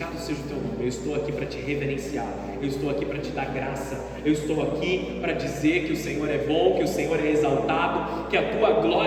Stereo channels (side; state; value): both; identical; correlation 1.00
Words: seja o teu nome. Eu estou aqui para te reverenciar. Eu estou aqui para te dar graça. Eu estou aqui para dizer que o Senhor é bom, que o Senhor é exaltado, que a tua